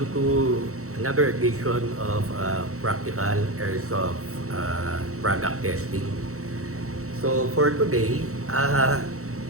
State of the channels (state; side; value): late; left; 0.64 ms